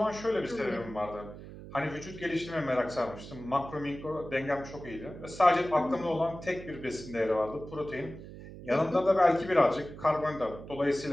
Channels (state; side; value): noise; right; hum, 14 dB below the sound